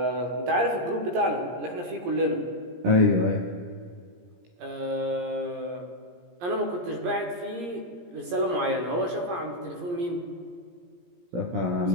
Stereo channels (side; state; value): left; late; 17 ms